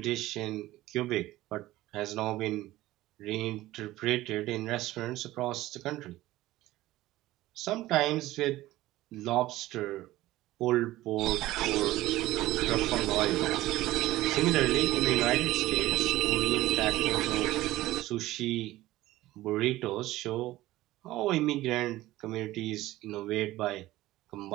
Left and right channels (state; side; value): quieter; left; 16.6 dB